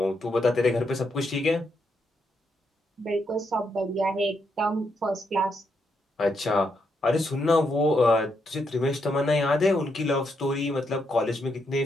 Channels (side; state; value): both; normal; correlation 0.79